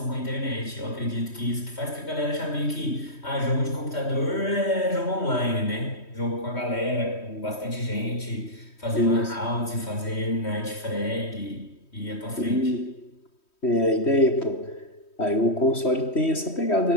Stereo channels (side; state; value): right; late; 3.1 ms